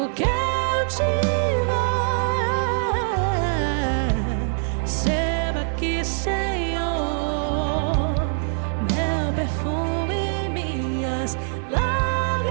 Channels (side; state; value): left; silent; 63 dB below the other